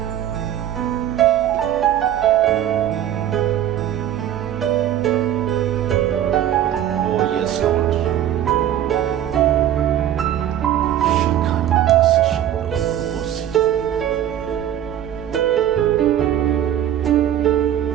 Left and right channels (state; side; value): quieter; left; 11.1 dB